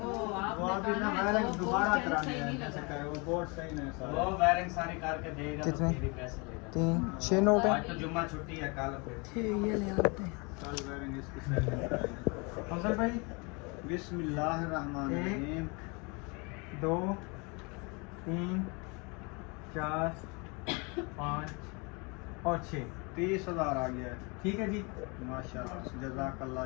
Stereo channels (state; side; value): quieter; right; 30.1 dB